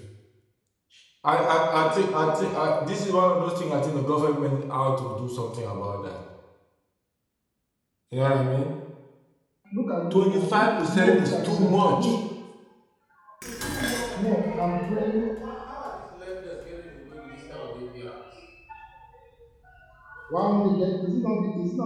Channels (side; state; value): both; identical; correlation 1.00